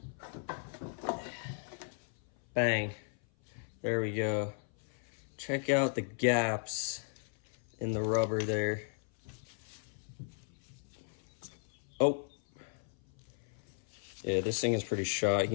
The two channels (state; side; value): silent; right; 54 dB below the other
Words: Bang, there we go. Check out the gaps in the rubber there. Oh, yeah, this thing is pretty shot. You